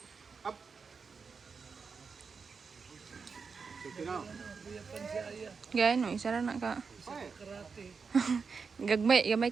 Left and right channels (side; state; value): left; quieter; 5.3 dB